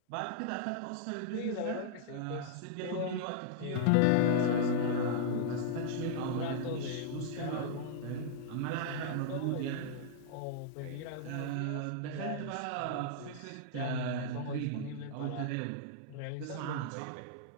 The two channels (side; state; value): both; different; correlation -0.02